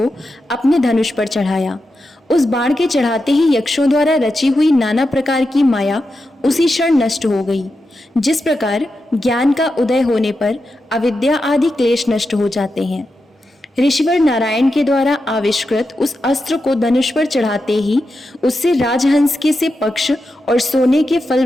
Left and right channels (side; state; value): both; normal; correlation 0.88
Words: अपने धनुष पर चढ़ाया। उस बाण के चढ़ाते ही यक्षों द्वारा रची हुई नाना प्रकार की माया उसी क्षण नष्ट हो गई। जिस प्रकार ज्ञान का उदय होने पर अविद्या आदि क्लेश नष्ट हो जाते हैं, ऋषिवर नारायण के द्वारा आविष्कृत उस अस्त्र को धनुष पर चढ़ाते ही उससे राजहंस के से पक्ष और सोने के फल